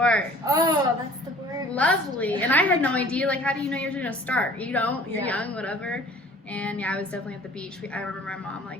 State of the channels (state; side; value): normal; both; correlation 0.50